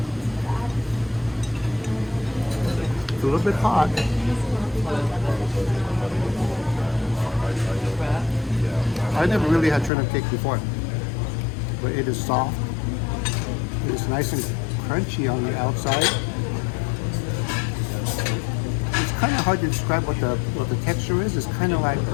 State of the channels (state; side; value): drops out; right; at 9.9 s